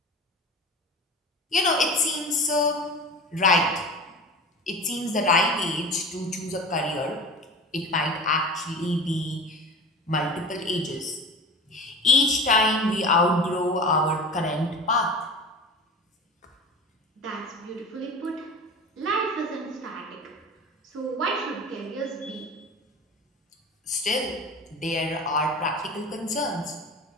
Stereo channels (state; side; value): normal; both; correlation 0.34